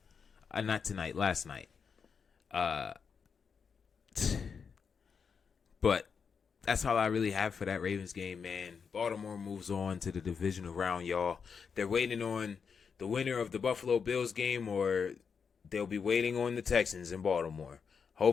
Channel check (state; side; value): quieter; right; 6.1 dB